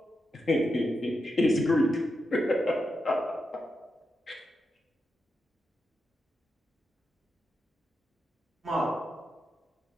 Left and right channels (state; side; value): normal; both; correlation 0.87